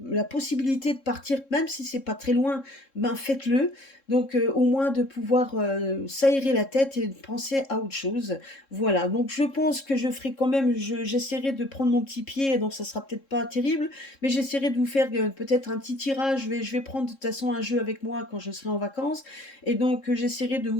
la possibilité de partir, même si c'est pas très loin, ben faites-le. Donc au moins de pouvoir s'aérer la tête et de penser à autre chose. Voilà, donc je pense que je ferai quand même, j'essaierai de prendre mon petit pied, donc ça sera peut-être pas terrible, mais j'essaierai de vous faire peut-être un petit tirage. Je vais prendre de toute façon un jeu avec moi quand je serai en vacances, et donc j'essaierai de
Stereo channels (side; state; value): right; late; 3.7 ms